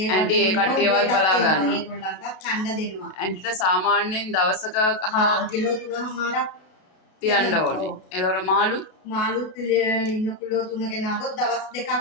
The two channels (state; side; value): late; right; 33 ms